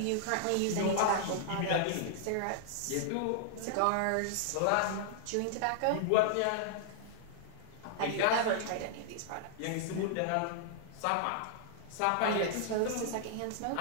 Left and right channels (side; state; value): both; different; correlation -0.01